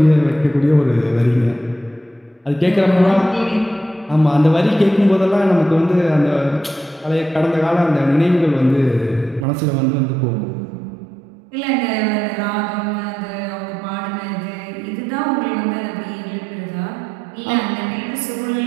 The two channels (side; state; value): left; drops out; at 9.5 s